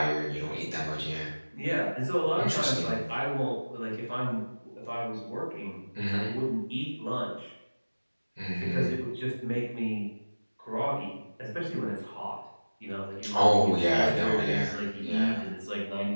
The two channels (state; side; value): inverted; both; correlation -1.00